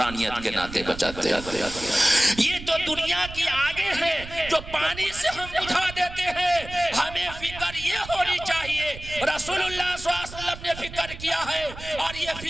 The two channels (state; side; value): noise; right; rumble, 13 dB below the sound